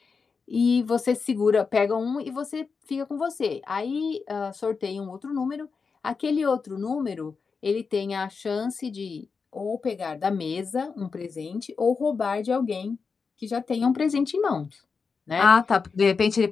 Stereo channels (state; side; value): quieter; right; 5.1 dB